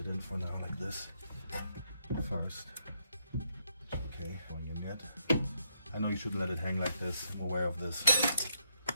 in for now like this first. Okay, going in yet. I know you shouldn't let it hang like this, I'm aware of this,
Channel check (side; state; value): both; inverted; correlation -0.78